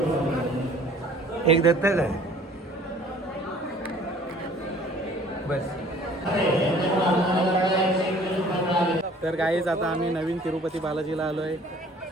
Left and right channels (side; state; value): both; normal; correlation 0.52